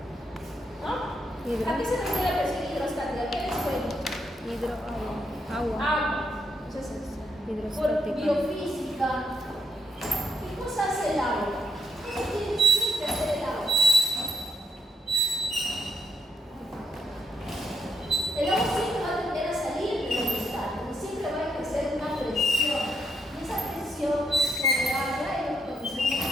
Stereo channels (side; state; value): both; normal; correlation 0.78